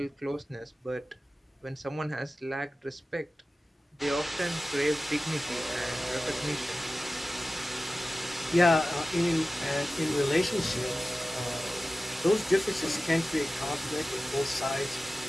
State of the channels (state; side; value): normal; both; correlation 0.96